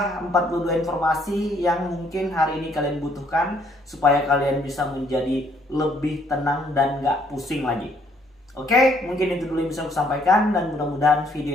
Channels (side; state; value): both; normal; correlation 0.67